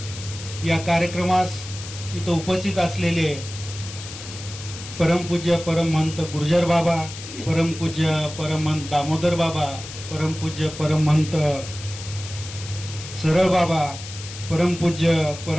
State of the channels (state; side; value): noise; left; hiss, 12 dB below the sound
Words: या कार्यक्रमास इथं उपस्थित असलेले परमपूज्य परमहंत गुर्जर बाबा, परमपूज्य परमहंत दामोदर बाबा, परमपूज्य परमहंत सरळ बाबा, परमपूज्य